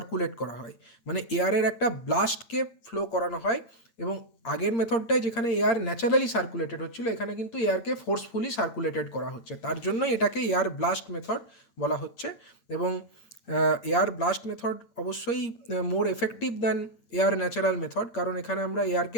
করা হয়, মানে এয়ারের একটা ব্লাস্টকে ফ্লো করানো হয়। এবং আগের মেথডটায় যেখানে এয়ার ন্যাচারালি সার্কুলেটেড হচ্ছিল, এখানে কিন্তু এয়ারকে ফোর্সফুলি সার্কুলেটেড করা হচ্ছে, তার জন্যই এটাকে এয়ার ব্লাস্ট মেথড বলা হচ্ছে। এবং এয়ার ব্লাস্ট মেথড অবশ্যই more effective than air natural method, কারণ এখানে আমরা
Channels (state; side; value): late; right; 9.0 ms